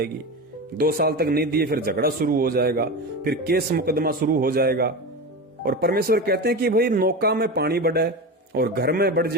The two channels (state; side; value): normal; both; correlation 0.24